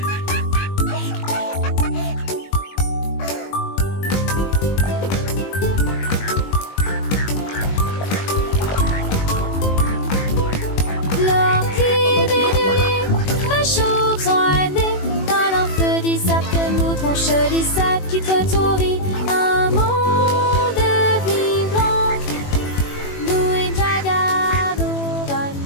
Mon joli sac qui te tourit, un monde vivant. Nous et Jaga, nous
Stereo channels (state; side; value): late; right; 21 ms